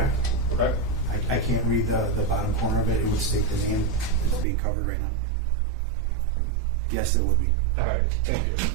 Okay. I can't read the bottom corner of it. It would state the name that's being covered right now. Yes, it would be. All right, thank you.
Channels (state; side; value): drops out; left; at 4.5 s